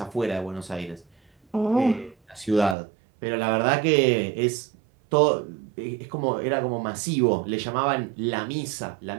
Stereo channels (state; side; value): drops out; left; at 2.8 s